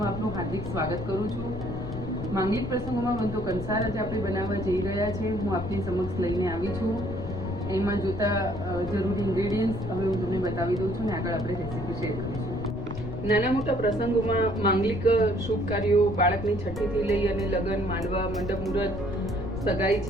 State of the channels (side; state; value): left; noise; rumble, 8 dB below the sound